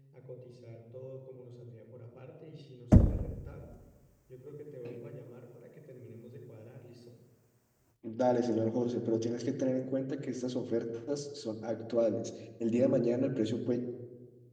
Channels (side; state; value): both; identical; correlation 1.00